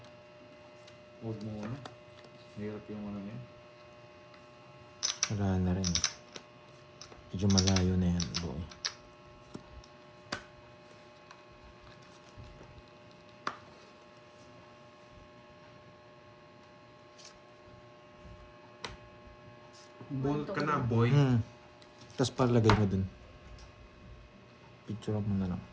Huwag muna. Mahirap yung ano yan. Wala na rin. Medyo malayo na yan, boy. Bolt ka na, boy. Tapos palagay mo dun. Picture mo na lang.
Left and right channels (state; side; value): identical; both; correlation 1.00